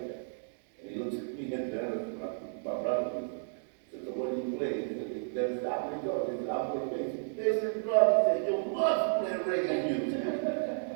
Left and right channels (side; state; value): left; silent; 56 dB below the other